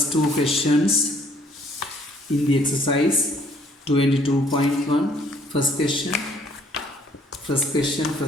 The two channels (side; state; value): both; normal; correlation 0.62